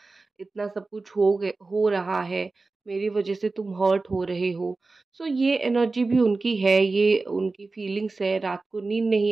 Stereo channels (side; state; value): left; quieter; 3.6 dB